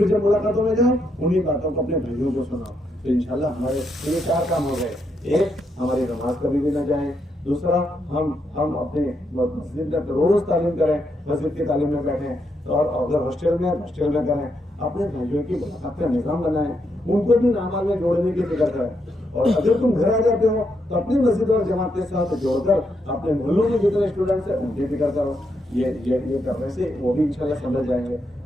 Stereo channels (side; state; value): both; normal; correlation 0.79